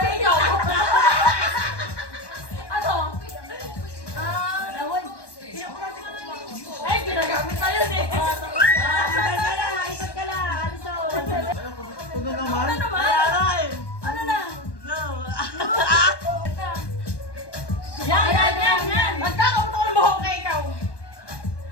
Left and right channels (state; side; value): late; right; 1.2 ms